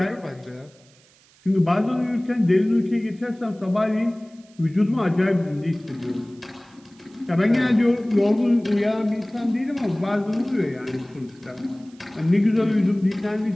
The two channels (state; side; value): noise; right; hiss, 30 dB below the sound